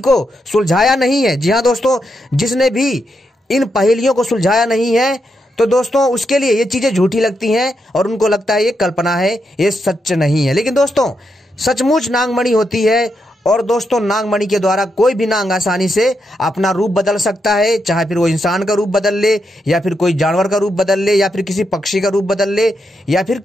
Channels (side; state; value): both; normal; correlation 0.83